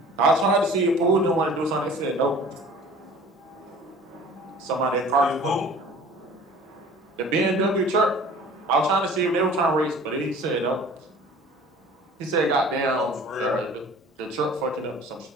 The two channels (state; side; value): normal; both; correlation 0.46